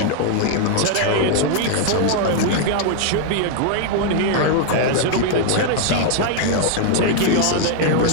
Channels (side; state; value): both; different; correlation 0.00